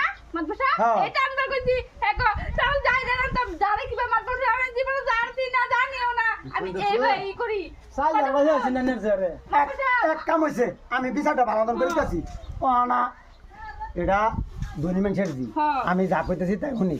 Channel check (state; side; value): identical; both; correlation 1.00